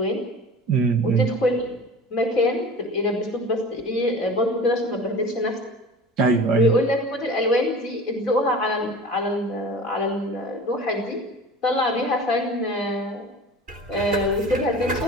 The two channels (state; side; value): normal; both; correlation 0.38